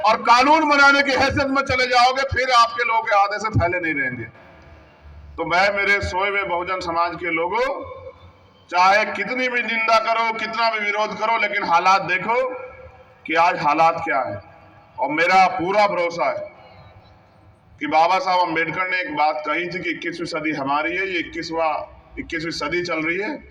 और कानून बनाने की हैसियत में चले जाओगे, फिर आपके लोग आधे से फैले नहीं रहेंगे। तो मैं मेरे सोए हुए बहुजन समाज के लोगों, चाहे कितनी भी निंदा करो, कितना भी विरोध करो, लेकिन हालात देखो कि आज हालात क्या है। और मेरा पूरा भरोसा है कि बाबा साहब अम्बेडकर ने एक बात कही थी कि 21वीं सदी हमारी है, ये 21वीं सदी चल रही है,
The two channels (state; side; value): identical; both; correlation 1.00